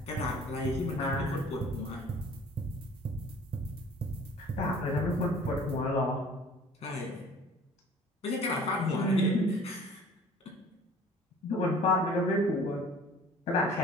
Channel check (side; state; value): both; normal; correlation 0.49